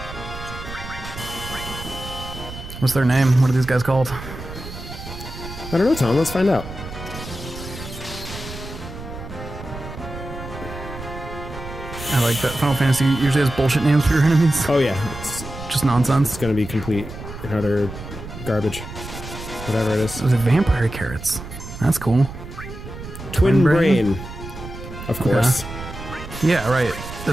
What's their name? What are these guys called? I don't know, Tom. Let's find out. I like that Final Fantasy usually has bullshit names for your enemies. Oh, yeah. It's just nonsense. It's going to be complete and utter garbage. Whatever it is. Those are vampire carrots. That's cool. Twin brain. Of course. Okay. Yeah, right.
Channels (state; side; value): noise; right; rumble, 11 dB below the sound